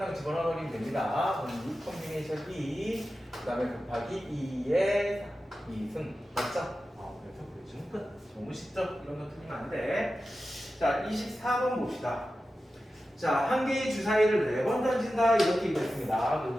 집어넣으면 됩니다. 그럼 U 컨비네이션 2, 그 다음에 곱하기 2의 2승, 맞죠? 그래서 보여주면 끝. 너무 쉽죠? 이런 거 틀리면 안 돼. 자, 24번 봅시다. 자, 한 개의 주사위를 4번 던진다 이렇게 얘기했습니다.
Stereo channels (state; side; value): normal; both; correlation 0.93